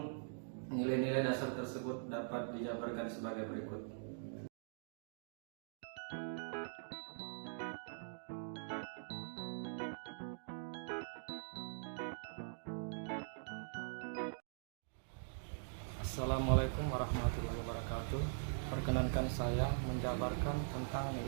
nilai-nilai dasar tersebut dapat dijabarkan sebagai berikut. Assalamualaikum warahmatullahi wabarakatuh. Perkenankan saya menjabarkan tentang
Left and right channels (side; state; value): left; silent; digital silence